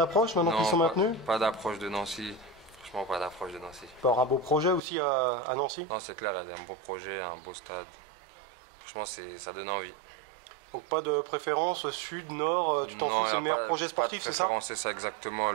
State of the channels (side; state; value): left; drops out; at 4.8 s